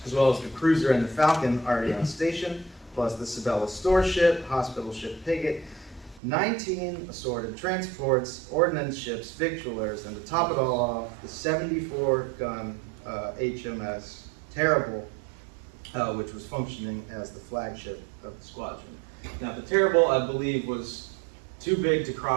as well as the Cruiser and the Falcon already on station, plus the Sabella store ship, hospital ship Piggott, 19 assorted transports, ordnance ships, victualers, and to top it all off, the 74-gun HMS Terrible, which was functioning as the flagship of the squadron. Now, the Terrible, I believe, was too big to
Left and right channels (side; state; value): left; drops out; at 6.2 s